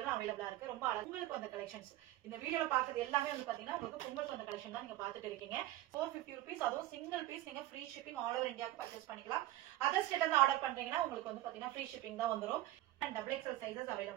அவேலபிளா இருக்கு. ரொம்ப அழகா உங்களுக்கு அந்த கலெக்ஷன்ஸ் இந்த வீடியோல பாக்குறது எல்லாமே வந்து பாத்தீங்கன்னா உங்களுக்கு பொங்கல் அந்த கலெக்ஷன் தான் நீங்க பாத்துட்டு இருக்கீங்க. 450 rupees அதுவும் சிங்கிள் பீஸ் நீங்க ஃப்ரீ ஷிப்பிங் ஆல் ஓவர் இந்தியாவுக்கு பர்ச்சேஸ் பண்ணிக்கலாம். அதர் ஸ்டேட்ல இருந்து ஆர்டர் பண்றீங்கன்னா உங்களுக்கு வந்து பாத்தீங்கன்னா ஃப்ரீ ஷிப்பிங் தான் வந்துரும். and XXL சைஸஸ்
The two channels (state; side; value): quieter; left; 15.6 dB